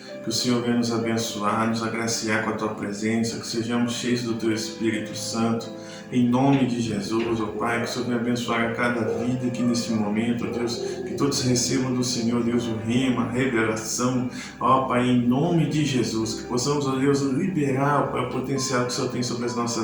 Que o Senhor venha nos abençoar, nos agraciar com a Tua presença, que sejamos cheios do Teu Espírito Santo, em nome de Jesus, ó Pai, que o Senhor venha abençoar a cada vida aqui neste momento, ó Deus, que todos recebam do Senhor, Deus, o rema, a revelação, ó Pai, em nome de Jesus, que possamos, ó Deus, liberar, ó Pai, o potencial que o Senhor tem sobre as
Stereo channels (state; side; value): identical; both; correlation 1.00